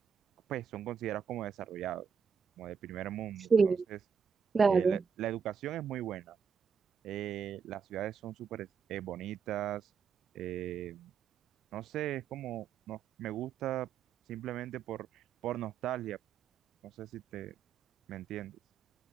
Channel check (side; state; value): left; quieter; 6.4 dB